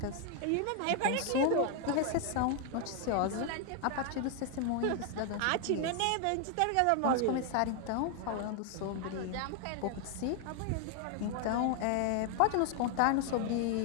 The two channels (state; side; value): different; both; correlation 0.00